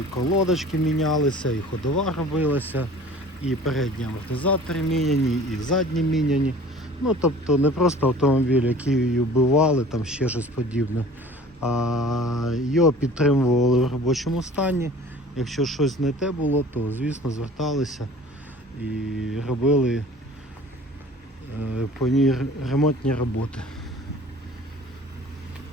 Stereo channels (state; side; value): normal; both; correlation 0.46